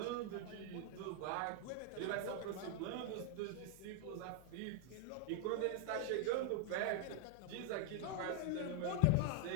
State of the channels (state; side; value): different; both; correlation 0.00